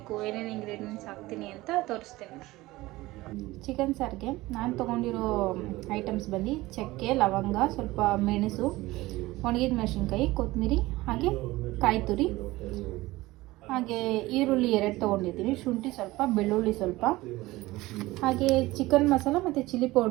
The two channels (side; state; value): left; quieter; 19.0 dB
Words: ಏನೇನು ಇಂಗ್ರೀಡಿಯೆಂಟ್ಸ್ ಹಾಕ್ತೀನಿ ಅಂತ ತೋರಿಸ್ತೀನಿ. ಚಿಕನ್ ಸಾರಿಗೆ ನಾನು ತೊಗೊಂಡಿರೋ ಐಟಮ್ಸ್ ಬಂದು ಚಕ್ಕೆ, ಲವಂಗ, ಸ್ವಲ್ಪ ಮೆಣಸು, ಒಣಗಿದ ಮೆಣಸಿನ್ಕಾಯಿ, ಕೊತ್ತಂಬರಿ, ಹಾಗೆ ಕಾಯಿ ತುರಿ, ಹಾಗೆ ಈರುಳ್ಳಿ 2 ತೊಗೊಂಡಿದ್ದೀನಿ, ಶುಂಠಿ ಸ್ವಲ್ಪ, ಬೆಳ್ಳುಳ್ಳಿ ಸ್ವಲ್ಪ, ಹಾಗೆ ಚಿಕನ್ ಮಸಾಲ ಮತ್ತು ಚಿಲ್ಲಿ